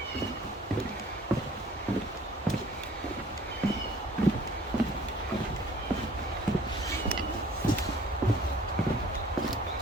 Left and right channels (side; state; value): both; normal; correlation 0.54